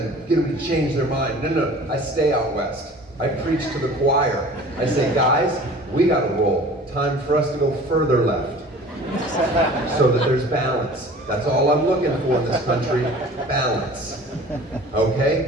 get them to change their mind. No, I stay out west. I preach to the choir. I say, guys, we gotta roll. Time for us to go further left so that there's balance. That's all I'm looking for in this country, balance.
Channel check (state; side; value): normal; both; correlation 0.44